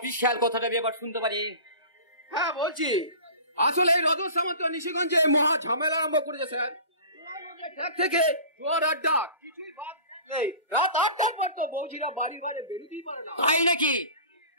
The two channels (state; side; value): inverted; both; correlation -0.39